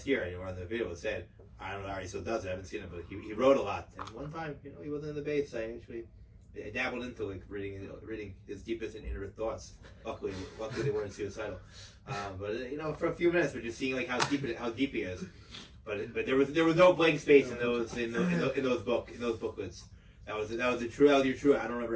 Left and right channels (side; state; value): both; identical; correlation 1.00